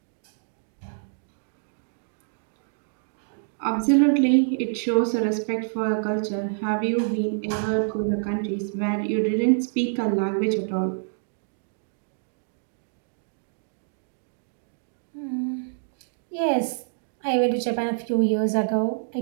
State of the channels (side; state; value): left; silent; digital silence